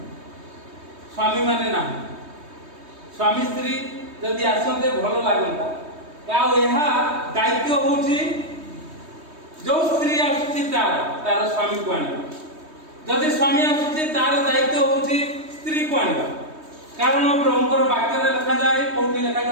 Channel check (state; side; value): late; left; 3.2 ms